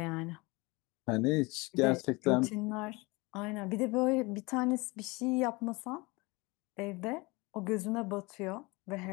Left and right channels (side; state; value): right; quieter; 25.0 dB